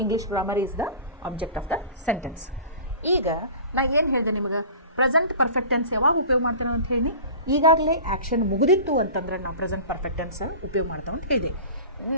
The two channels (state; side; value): inverted; both; correlation -0.38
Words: English grammar is the object of the sentence. ಈಗ ನಾ ಏನು ಹೇಳಿದೆ ನಿಮಗೆ? Present perfect tense ಯಾವಾಗ ಉಪಯೋಗ ಮಾಡ್ತೇನೆ ಅಂತ ಹೇಳಿ, ಈಗಾಗಲೇ ಆ್ಯಕ್ಷನ್ ಮುಗಿದಿತ್ತು ಅಂತಂದ್ರೆ ನಾವು ಪ್ರೆಸೆಂಟ್ ಪರ್ಫೆಕ್ಟ್ ಟೆನ್ಸ್ ಉಪಯೋಗ ಮಾಡ್ತಾವೆ ಅಂತ ಹೇಳಿದೆ.